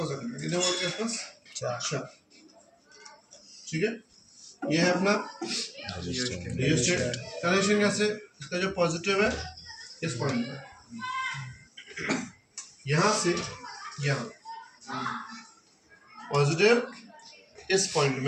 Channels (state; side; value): identical; both; correlation 1.00